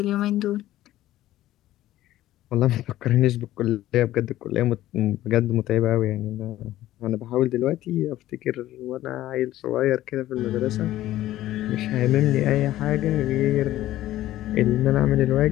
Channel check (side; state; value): right; quieter; 14.6 dB